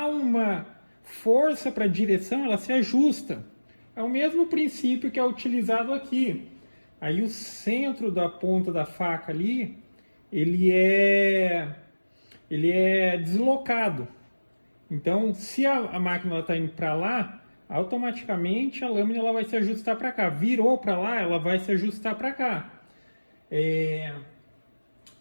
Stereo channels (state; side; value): inverted; both; correlation -1.00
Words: uma força para a direção, ela se ajusta. É o mesmo princípio que é utilizado aqui. Aí o centro da ponta da faca ali, ele é deslocado. Então, se a máquina está indo para lá, automaticamente a lâmina ela vai se ajustar para cá. Virou para lá, ela vai se ajustar para cá.